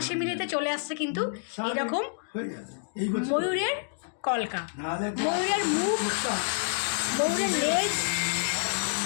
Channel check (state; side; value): silent; right; digital silence